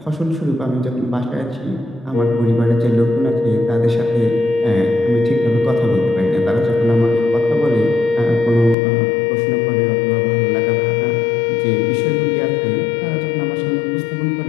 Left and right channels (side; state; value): right; drops out; at 8.8 s